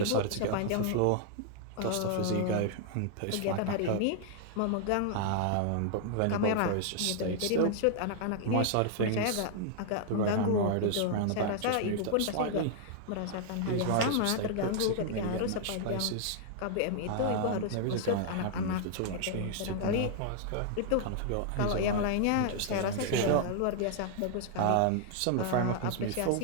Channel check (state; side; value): different; both; correlation -0.01